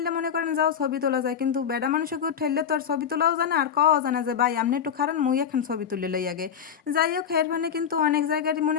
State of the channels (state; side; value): quieter; right; 7.9 dB